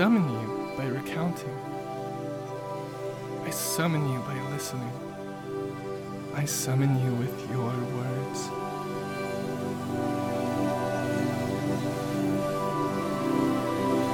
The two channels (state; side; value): identical; both; correlation 1.00